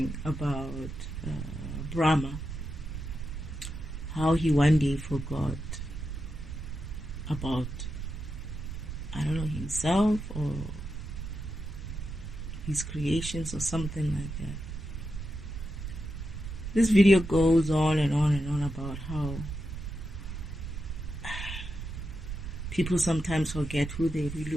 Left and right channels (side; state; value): right; noise; rumble, 7 dB below the sound